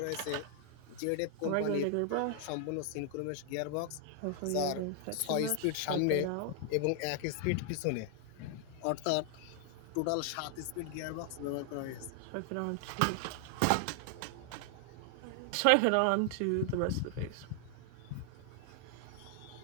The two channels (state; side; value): different; both; correlation 0.00